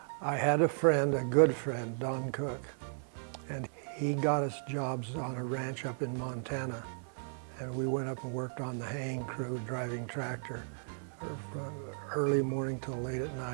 I had a friend, a good friend, Don Cook, and he got us jobs on a ranch up in Montana, and we went up and worked on the haying crew, driving tractor from early morning till late at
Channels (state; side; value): silent; left; 54 dB below the other